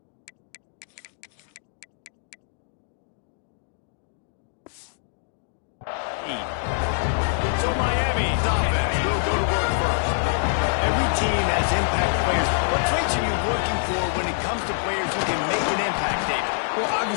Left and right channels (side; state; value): right; silent; digital silence